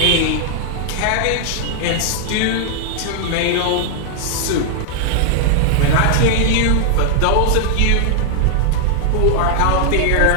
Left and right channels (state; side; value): different; both; correlation 0.00